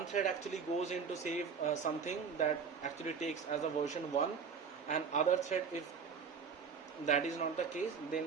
thread actually goes in to save something that actually takes as a version 1, and other thread, if that is not the case,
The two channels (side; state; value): left; quieter; 6.1 dB